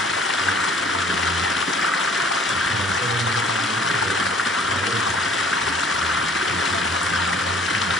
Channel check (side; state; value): both; normal; correlation 0.54